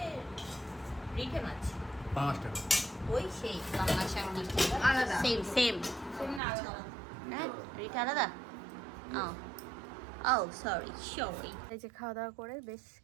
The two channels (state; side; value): drops out; left; at 6.4 s